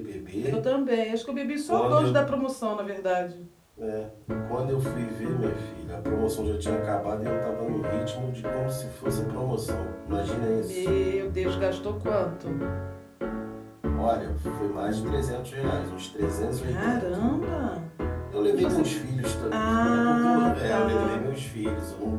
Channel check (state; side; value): identical; both; correlation 1.00